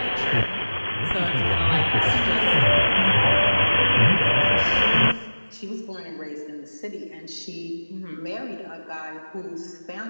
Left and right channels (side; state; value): both; inverted; correlation -1.00